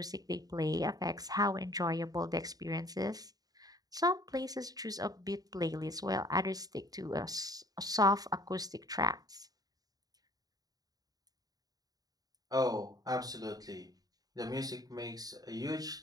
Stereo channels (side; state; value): left; late; 0.18 ms